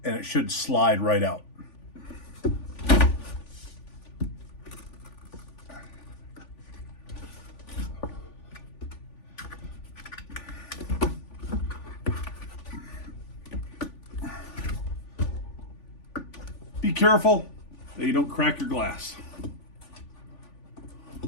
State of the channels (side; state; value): right; late; 3.5 ms